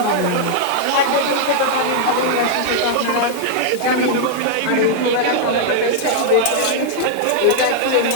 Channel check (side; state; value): both; different; correlation -0.01